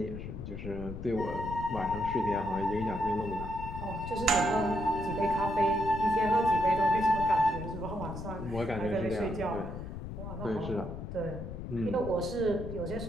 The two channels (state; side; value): noise; left; rumble, 8 dB below the sound